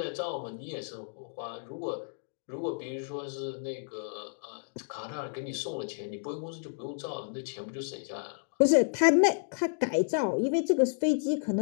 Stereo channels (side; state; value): right; silent; digital silence